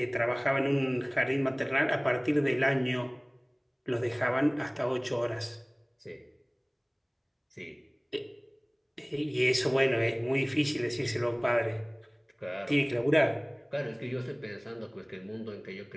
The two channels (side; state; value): both; identical; correlation 1.00